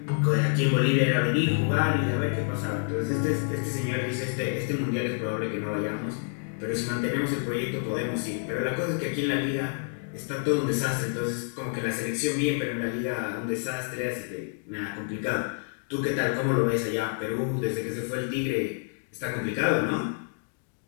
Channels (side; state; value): right; silent; 59 dB below the other